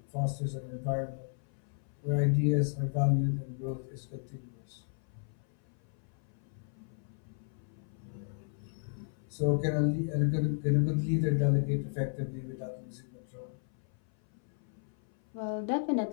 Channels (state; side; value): silent; right; 55 dB below the other